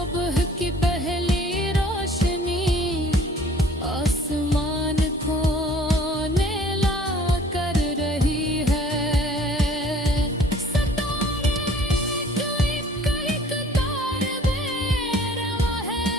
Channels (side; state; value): both; normal; correlation 0.53